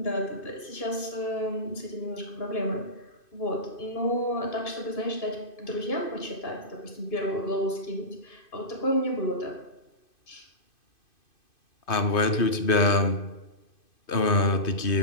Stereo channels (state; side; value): late; right; 2.5 ms